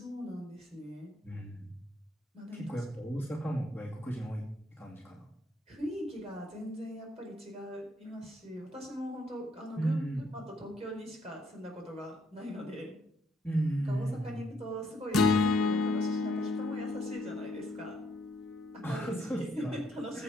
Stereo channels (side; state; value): both; normal; correlation 0.70